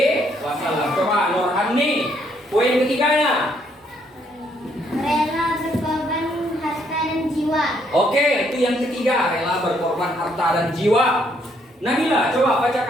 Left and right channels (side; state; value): both; normal; correlation 0.70